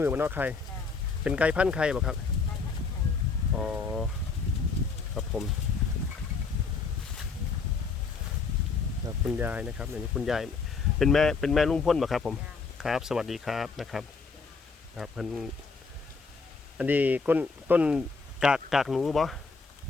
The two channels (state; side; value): quieter; right; 4.7 dB